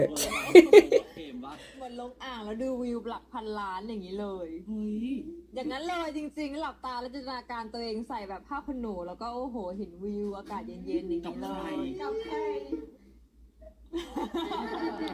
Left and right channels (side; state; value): both; identical; correlation 1.00